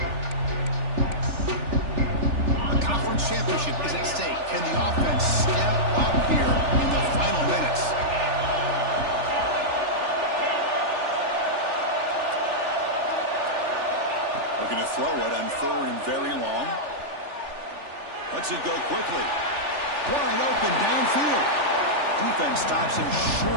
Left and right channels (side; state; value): left; late; 3.4 ms